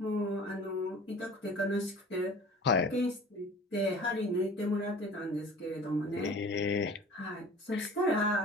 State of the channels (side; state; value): both; normal; correlation 0.43